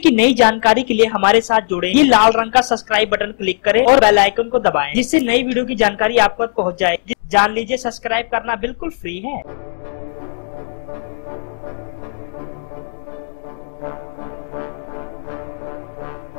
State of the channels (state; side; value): silent; right; digital silence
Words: नई जानकारी के लिए हमारे साथ जुड़े। ये लाल रंग का सब्सक्राइब बटन क्लिक करें और बेल आइकन को दबाएं, जिससे नई वीडियो की जानकारी आप तक पहुंच जाए। जान लीजिए, सब्सक्राइब करना बिल्कुल फ्री है। निरहुआ हिंदुस्तानी 2 के ट्रेलर को देख चुके हैं अभी तक 10 लाख लोग। जी हाँ दोस्तों, बिल्कुल